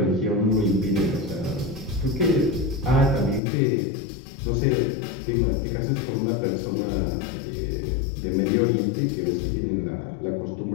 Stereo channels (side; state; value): right; drops out; at 3.4 s